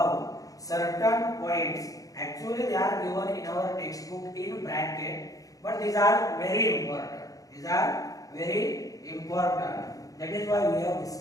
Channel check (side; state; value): right; late; 0.17 ms